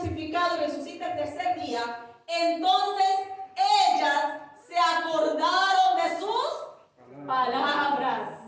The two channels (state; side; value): identical; both; correlation 1.00